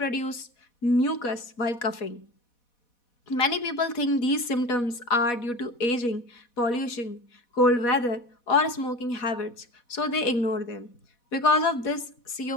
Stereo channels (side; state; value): right; late; 4.1 ms